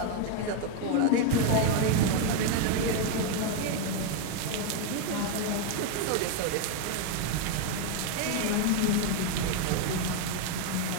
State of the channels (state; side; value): different; both; correlation 0.01